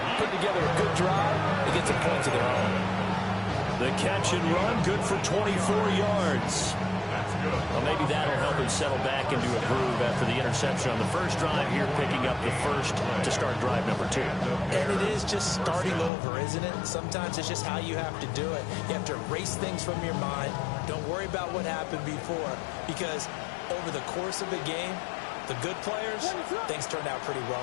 put together a good drive to get some points of their own. The catch and run, good for 24 yards. That's good. Well, maybe that'll help him settle back into a groove after the interception on the first drive here, picking up the first to start drive number 2. And it is just starting over, isn't it? Sometimes it's just how you have to do it. You have to erase things from your mind. Don't worry about what happened before, because over the course of a game, the good players, things turned out pretty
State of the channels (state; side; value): drops out; right; at 16.1 s